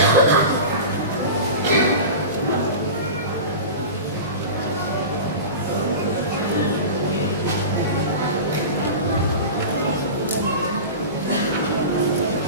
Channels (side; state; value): both; inverted; correlation -0.30